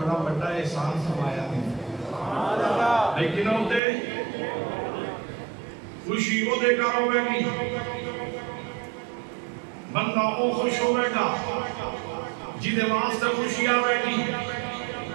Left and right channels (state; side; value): drops out; left; at 3.8 s